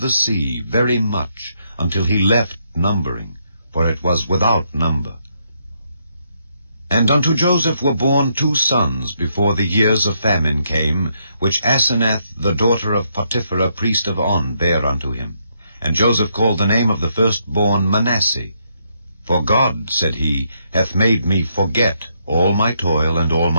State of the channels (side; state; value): both; inverted; correlation -0.76